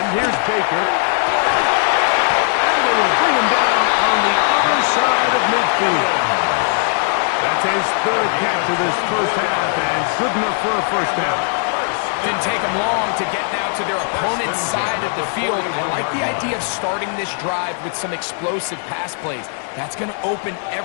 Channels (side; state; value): right; silent; 56 dB below the other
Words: here's Baker. And they will bring him down on the other side of midfield. That's his third catch of this first half, and good enough for a first down. Didn't take them long to get now to their opponent's side of the field. I like the idea of starting this drive with some explosive pass plays. That's going to open